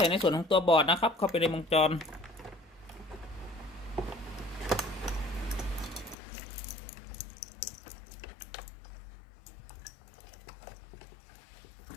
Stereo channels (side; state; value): right; drops out; at 6.2 s